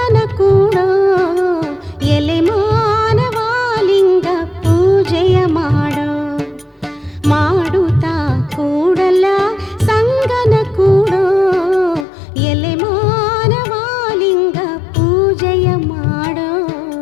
ಕೂಡೋ. ಎಲೆ ಮಾನವಾಲಿಂಗ ಪೂಜೆಯ ಮಾಡೋ, ಮಾಡುತ್ತಾ ಕೂಡಲ ಸಂಗನ ಕೂಡೋ. ಎಲೆ ಮಾನವಾಲಿಂಗ ಪೂಜೆಯ ಮಾಡೋ.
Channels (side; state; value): right; drops out; at 12.1 s